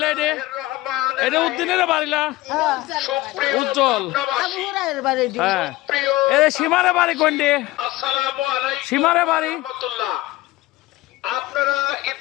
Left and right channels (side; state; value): right; quieter; 18.1 dB